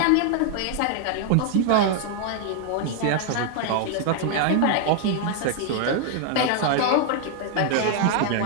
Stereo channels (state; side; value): different; both; correlation 0.00